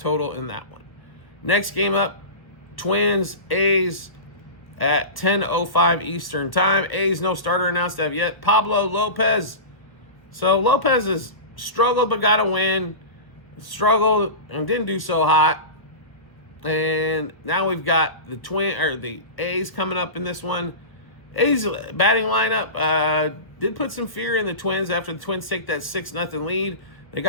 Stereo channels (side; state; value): right; late; 1.1 ms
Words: in that one. Next game up, Twins, A's at 10:05 Eastern time. A's no starter announced as of yet. Pablo Lopez. So Lopez has struggled but got a win. Struggled and didn't do so hot. And now we've got the A's coming up in this one. A's batting lineup did put some fear in the Twins after the Twins take that 6-0 lead. They